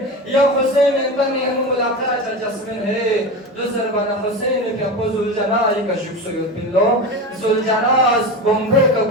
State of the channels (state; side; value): normal; both; correlation 0.25